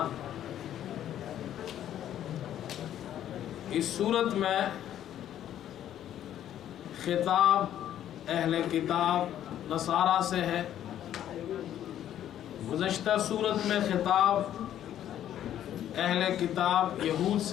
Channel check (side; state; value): right; quieter; 11.2 dB